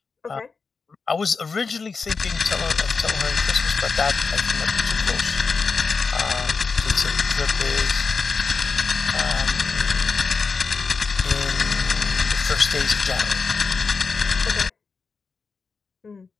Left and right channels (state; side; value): quieter; right; 4.8 dB